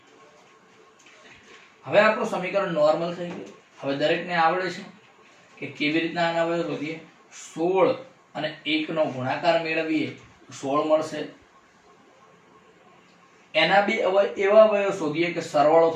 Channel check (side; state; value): both; identical; correlation 1.00